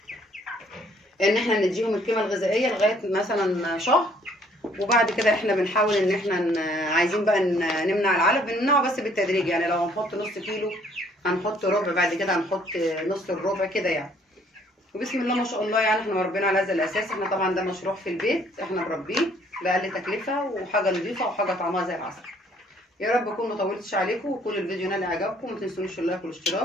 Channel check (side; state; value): both; normal; correlation 0.62